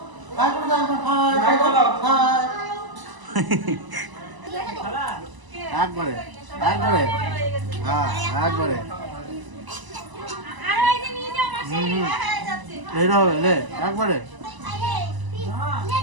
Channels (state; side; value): late; left; 1.0 ms